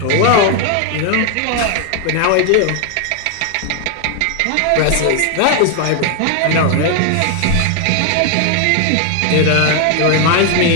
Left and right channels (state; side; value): different; both; correlation 0.00